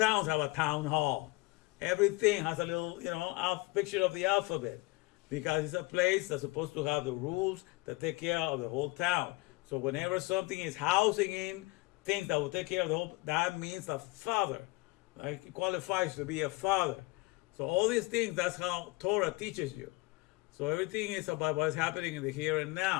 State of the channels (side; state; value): right; quieter; 23.3 dB